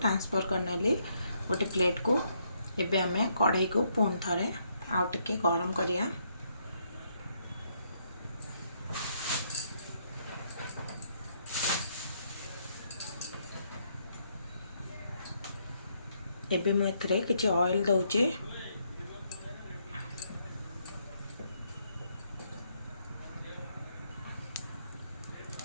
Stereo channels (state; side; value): inverted; both; correlation -0.74